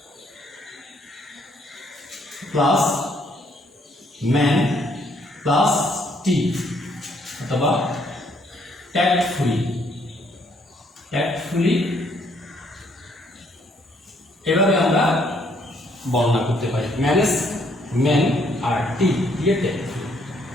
প্লাস ম্যান প্লাস টি অথবা ট্যাক্টফুলি এভাবে আমরা বর্ণনা করতে পারি। ম্যানেজ ম্যান আর টি দিয়ে ট্যাক্টফুলি,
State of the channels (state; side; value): normal; both; correlation 0.68